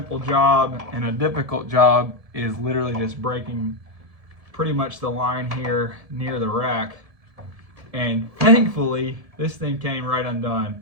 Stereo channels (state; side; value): late; left; 1.7 ms